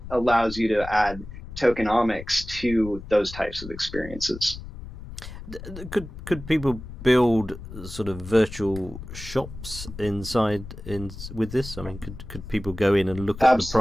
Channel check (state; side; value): noise; left; rumble, 12 dB below the sound